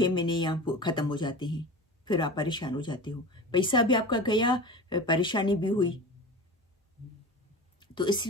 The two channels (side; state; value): both; normal; correlation 0.33